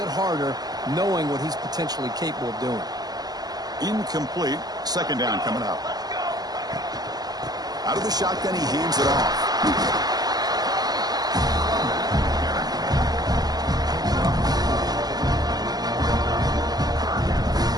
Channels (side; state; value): left; late; 0.19 ms